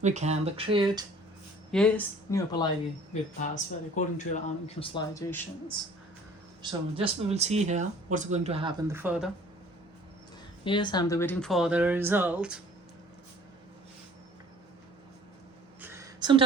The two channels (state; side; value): normal; both; correlation 0.51